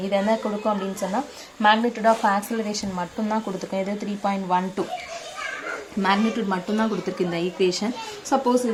இது என்ன கொடுக்கும் அப்படின்னு சொன்னா magnitude of acceleration மட்டும் தான் கொடுத்துக்கும் இது 3.12 magnitude மட்டும் தான் கொடுத்திருக்கு இந்த ஈக்குவேஷன் சப்போஸ்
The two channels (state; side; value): identical; both; correlation 1.00